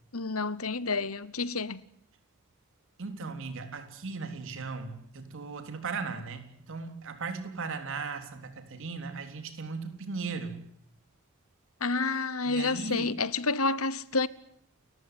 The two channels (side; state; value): both; normal; correlation 0.01